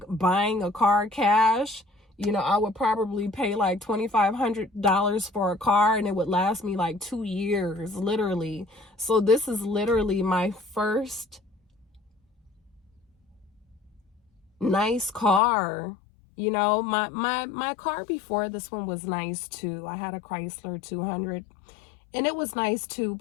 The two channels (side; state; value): right; drops out; at 15.4 s